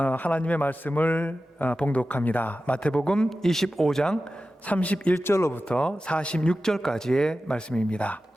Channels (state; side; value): normal; both; correlation 0.94